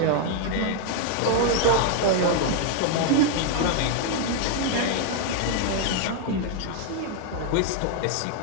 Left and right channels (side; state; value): both; different; correlation 0.00